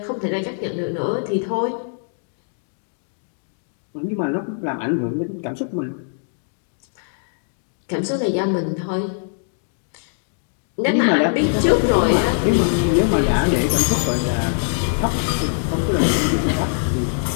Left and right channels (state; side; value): silent; right; digital silence